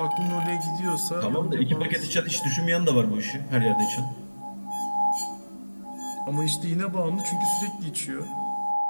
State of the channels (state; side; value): inverted; both; correlation -1.00